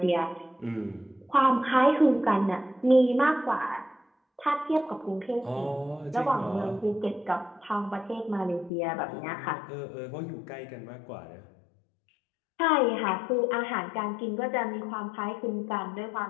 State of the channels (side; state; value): right; drops out; at 8.7 s